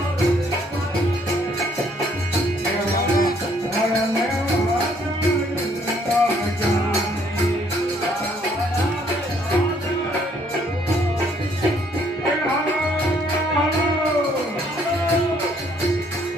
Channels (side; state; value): both; normal; correlation 0.65